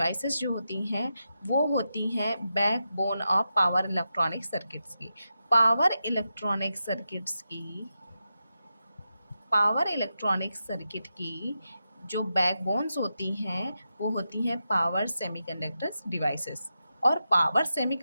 जो होती हैं वो होती हैं backbone of power electronic circuits की। पावर इलेक्ट्रॉनिक सर्किट्स की पावर इलेक्ट्रॉनिक सर्किट की जो बैकबोन्स होती हैं वो होती हैं पावर सेमीकंडक्टर्स डिवाइसेस। और पावर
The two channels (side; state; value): both; inverted; correlation -0.88